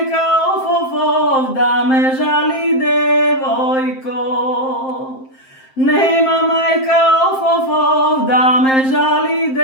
of da me žali devojko, nema majka of da me žali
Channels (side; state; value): right; late; 7.6 ms